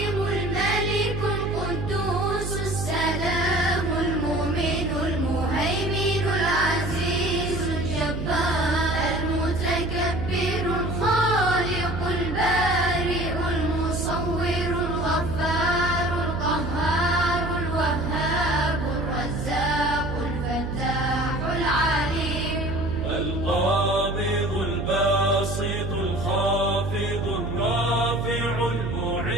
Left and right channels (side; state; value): right; noise; hum, 5 dB below the sound